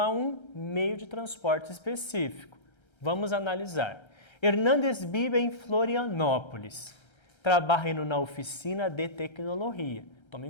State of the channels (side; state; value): right; late; 1.3 ms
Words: um meio de transporte específico. Vamos analisar. Hernández vive em Florianópolis. Trabalha na oficina de tecnologia.